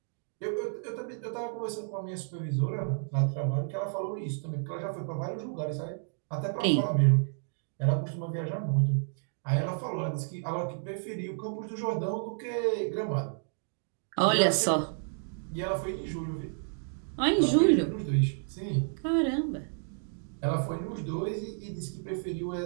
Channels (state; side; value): silent; left; digital silence